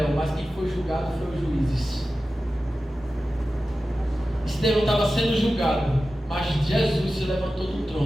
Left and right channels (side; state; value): both; normal; correlation 0.94